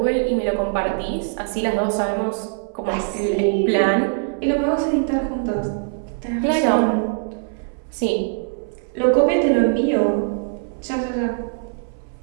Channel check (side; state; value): left; silent; 62 dB below the other